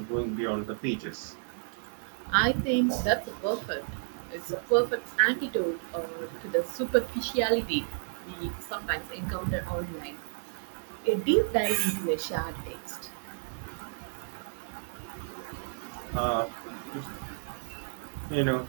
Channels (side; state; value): left; silent; 57 dB below the other